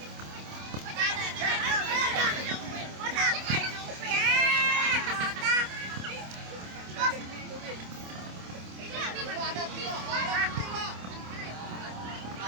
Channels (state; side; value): late; left; 27 ms